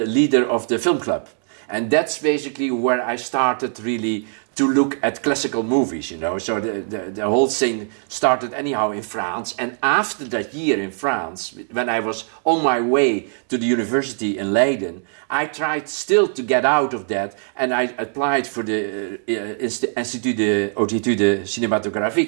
leader of the film club. And that's basically where I started really to look at classical movies, you know. So the whole thing started anyhow in France. And after that year in France, when I was on my way to the university in Leiden, I tried still to get out of that, and I applied for the Institut d'Études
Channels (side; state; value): left; silent; digital silence